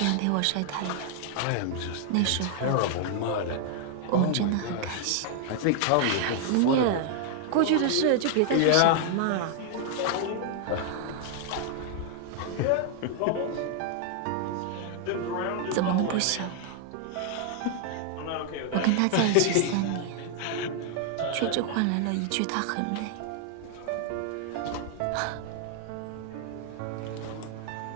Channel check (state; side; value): different; both; correlation 0.00